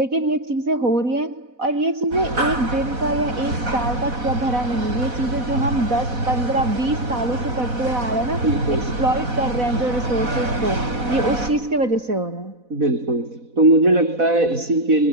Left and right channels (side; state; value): left; late; 4.1 ms